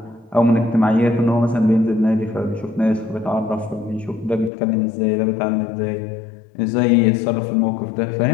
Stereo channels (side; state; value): right; drops out; at 4.5 s